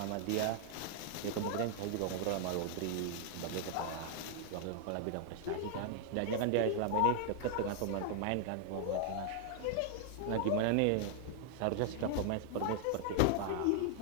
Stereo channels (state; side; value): different; both; correlation 0.00